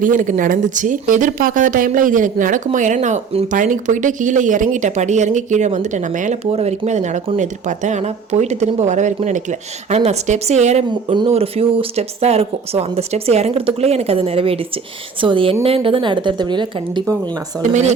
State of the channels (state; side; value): quieter; left; 5.6 dB